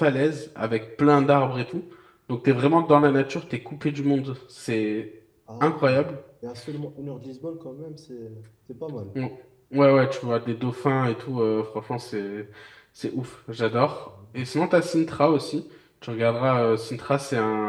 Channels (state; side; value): identical; both; correlation 1.00